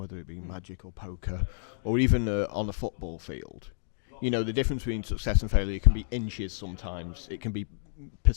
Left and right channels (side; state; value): right; silent; digital silence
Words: it be Magic or poker, or even on a football field. The difference between success and failure can be inches sometimes. It can be